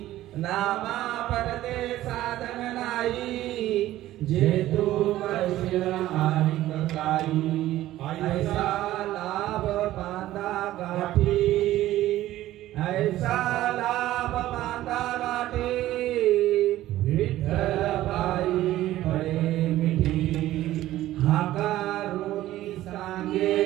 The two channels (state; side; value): quieter; left; 14.7 dB